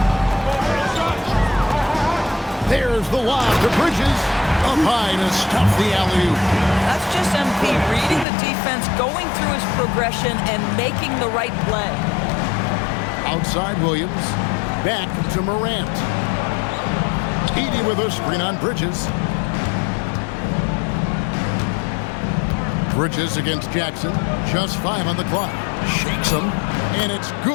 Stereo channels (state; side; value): drops out; right; at 8.2 s